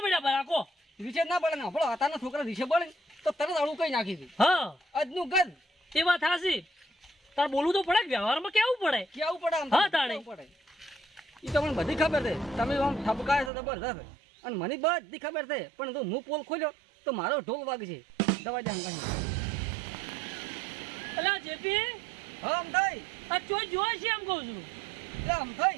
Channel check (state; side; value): drops out; left; at 13.5 s